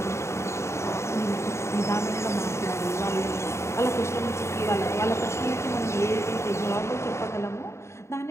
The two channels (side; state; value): right; late; 0.13 ms